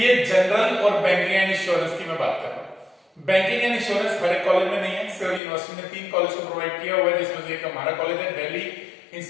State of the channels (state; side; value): drops out; right; at 5.4 s